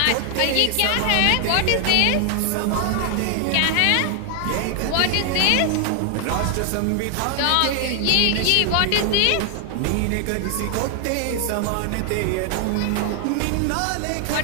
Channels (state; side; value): different; both; correlation 0.00